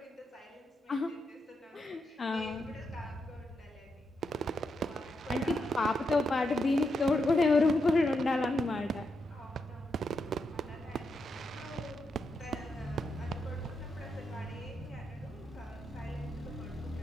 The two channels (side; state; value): both; normal; correlation 0.83